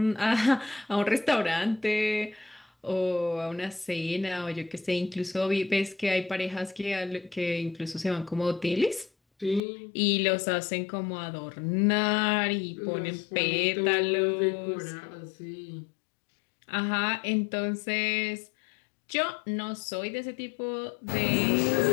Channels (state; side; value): drops out; right; at 9.6 s